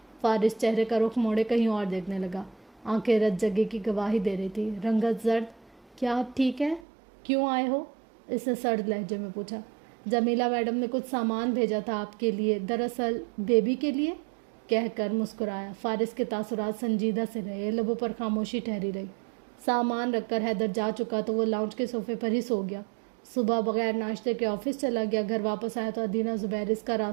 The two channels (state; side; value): drops out; left; at 6.8 s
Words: فارس چہرے کا رخ موڑے کہیں اور دیکھنے لگا۔ آنکھیں رت جگہ کی گواہی دے رہی تھی۔ رنگت زرد۔ کیا آپ ٹھیک ہیں؟ کیوں آئے ہو؟ اس نے سرد لہجے میں پوچھا۔ جمیلہ میڈم نے کچھ سامان بھیجا تھا آپ کے لیے، دراصل بیبی کے لیے، کہہ کر مسکرایا۔ فارس کے تاثرات سنجیدہ سے رہے، لبوں پر خاموشی ٹھہری رہی۔ سامان رکھ کر حیدر جا چکا تو وہ لاؤنج کے صوفے پر ہی سو گیا۔ صبح بغیر ناشتے کے آفس چلا گیا۔ گھر واپس آیا تو ادینہ زبیر اس کا